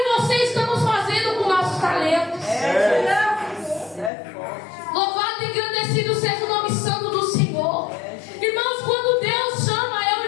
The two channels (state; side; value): drops out; right; at 4.1 s